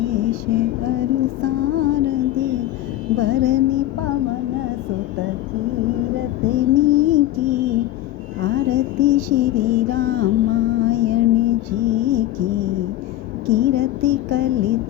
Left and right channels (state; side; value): quieter; right; 14.2 dB